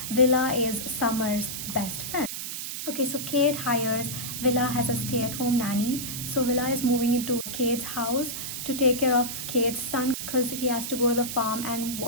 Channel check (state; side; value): noise; right; hiss, 6 dB below the sound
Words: Willa is Summer's best friend. Okay, so Cade hires Willa as a stay-at-home nanny. So Willa is moving into Cade's house to take care of Cade's son because he has to go to the farm and